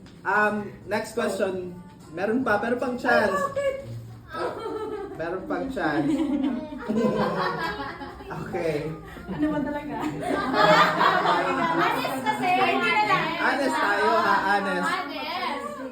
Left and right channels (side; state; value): both; identical; correlation 1.00